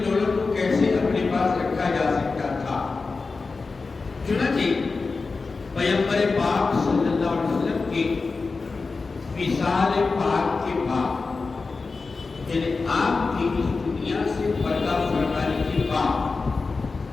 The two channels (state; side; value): quieter; right; 4.2 dB